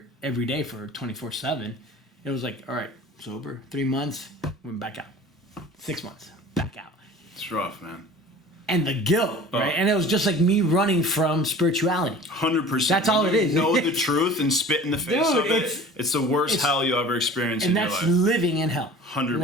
every day for 24/7. It was like, all right, sober, 3 months, went back out. 6 months, back out. It's rough, man. And the guilt, right? And it was just like me running from spirituality. 100%. That's all it is. Know the truth and spit in the face of it. It's the worst hell you ever experienced in your life. And that's living in hell. 100%.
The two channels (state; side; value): normal; both; correlation 0.43